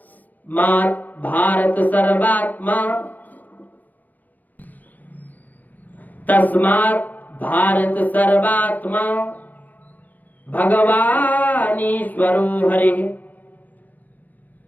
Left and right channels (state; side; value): late; right; 0.083 ms